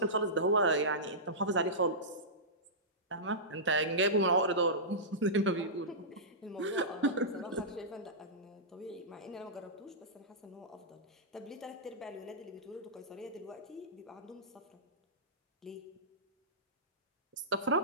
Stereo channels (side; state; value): both; normal; correlation -0.17